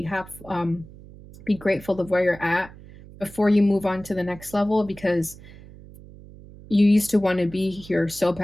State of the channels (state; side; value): noise; right; hum, 19 dB below the sound